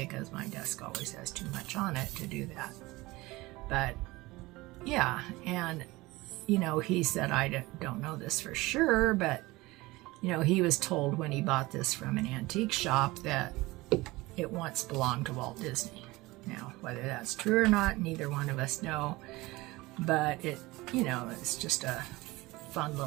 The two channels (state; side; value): quieter; left; 20.9 dB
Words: my desk always has too much on it to do that. But yeah, and you know, he said, I don't know this for sure, but you know, he was told when he bought this from an antique shop that it once belonged to Walt Disney. Now, whether that's true or not, neither one of us know, but it, you know, it's just a fun